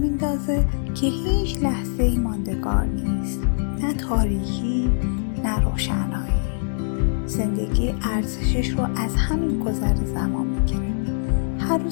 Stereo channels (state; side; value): silent; right; digital silence